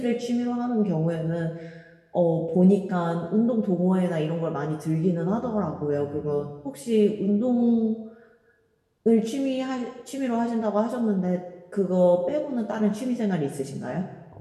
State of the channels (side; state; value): both; identical; correlation 1.00